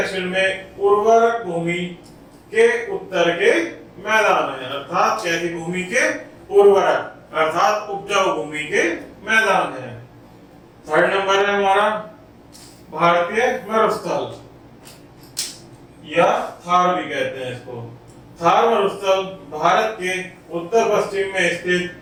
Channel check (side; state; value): both; identical; correlation 1.00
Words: में उर्वरक भूमि के उत्तर के मैदान है, अर्थात कैसी भूमि के? उर्वरक, अर्थात उपजाऊ भूमि के मैदान है। थर्ड नंबर है हमारा भारतीय मरुस्थल, या थार भी कहते हैं इसको। थार मरुस्थल भारत के उत्तर पश्चिम में स्थित